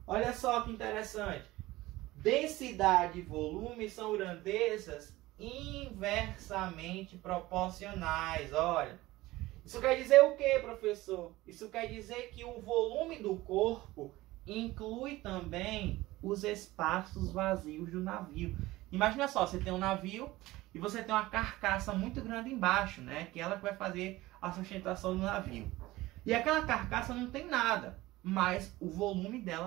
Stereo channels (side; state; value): left; quieter; 18.3 dB